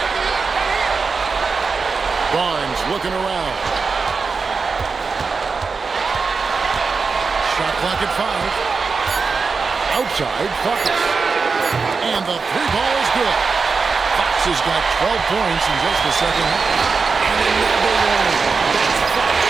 Barnes looking around. Shot clock at 5. Outside, Fox. And the 3-ball is good. Fox has got 12 points in just the second half. And another one. That's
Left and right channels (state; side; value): quieter; left; 4.8 dB